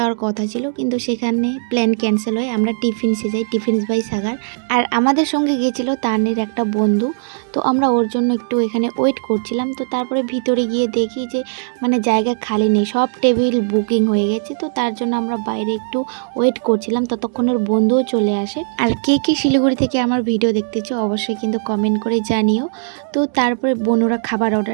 কথা ছিল, কিন্তু সেখানে প্ল্যান ক্যান্সেল হয়। আমরা টিফিনসে যাই, টিফিনস বাই সাগার। আর আমাদের সঙ্গে গিয়েছিল তানের একটা বন্ধু। তো আমরা ওর জন্য একটু এখানে ওয়েট করছিলাম। তো তারপরে ভিতরে গিয়ে দেখি যে জায়গা খালি নেই, সব টেবিল বুকিং হয়ে গেছে। তো তার জন্য আমরা বাইরে একটু ওয়েট করছিলাম, ততক্ষণ ওর বন্ধুও চলে আসে। আর কে কে শিলিগুড়ি থেকে আমার ভিডিও দেখতেছো অবশ্যই কিন্তু কমেন্ট করে জানিও। তো তারপরে বোনরা খাবার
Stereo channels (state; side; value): silent; left; digital silence